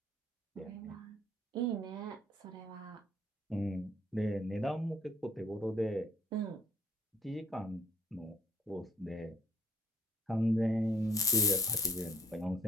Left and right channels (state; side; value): normal; both; correlation 0.61